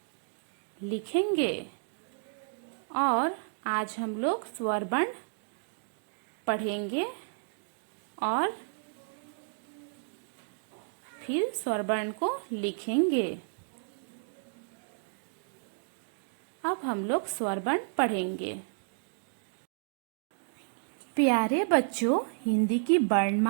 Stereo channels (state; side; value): silent; left; digital silence